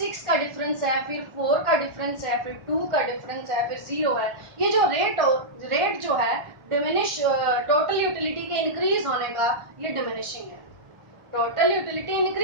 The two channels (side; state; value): left; late; 1.4 ms